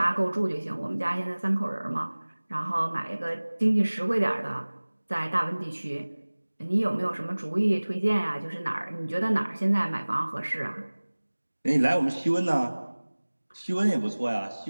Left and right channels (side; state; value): both; inverted; correlation -1.00